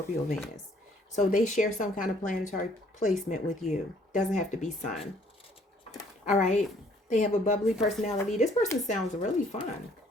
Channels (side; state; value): both; normal; correlation 0.62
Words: Venus. So they share some kind of planetary placement with you. Doesn't have to be sun. All right. They have a bubbly personality. This person sounds really fun.